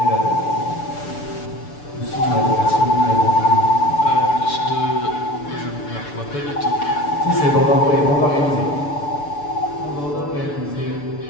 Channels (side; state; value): right; late; 6.9 ms